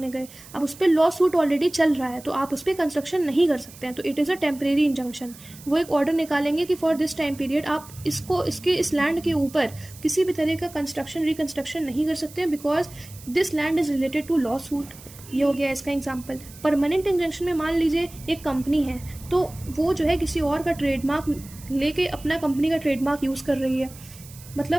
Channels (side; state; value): right; noise; hiss, 19 dB below the sound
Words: गए। अब उस पर लॉ सूट ऑलरेडी चल रहा है तो आप उस पर कंस्ट्रक्शन नहीं कर सकते हैं, तो it is a temporary injunction. वो एक ऑर्डर निकालेंगे कि फॉर दिस टाइम पीरियड आप इस लैंड के ऊपर किसी भी तरह का कंस्ट्रक्शन रिकंस्ट्रक्शन नहीं कर सकते हैं because this land is related to lawsuit. ये हो गया इसका एग्जाम्पल। परमानेंट इंजंक्शन में मान लीजिए एक कंपनी है, तो वो जो है किसी और का ट्रेडमार्क लेके अपना कंपनी का ट्रेडमार्क यूज़ कर रही है,